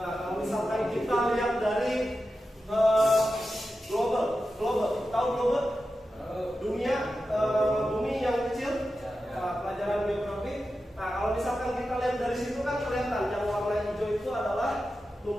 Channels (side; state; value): both; normal; correlation 0.91